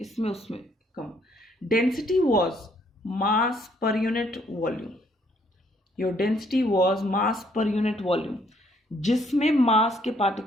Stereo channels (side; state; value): both; normal; correlation 0.68